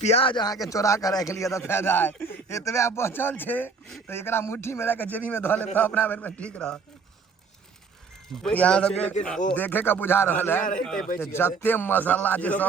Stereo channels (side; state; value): left; quieter; 4.8 dB